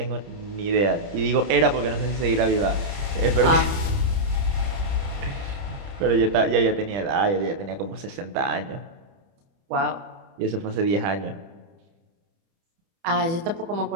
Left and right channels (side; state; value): left; late; 30 ms